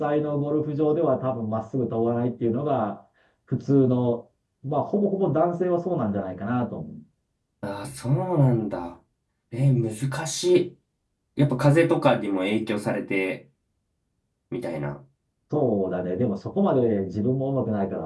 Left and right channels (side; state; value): both; identical; correlation 1.00